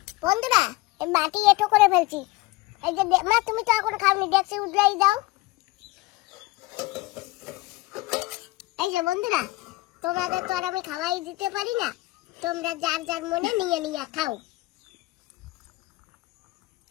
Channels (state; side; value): quieter; right; 20.7 dB